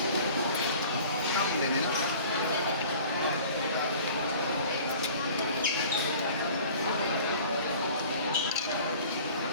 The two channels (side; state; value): both; inverted; correlation -0.46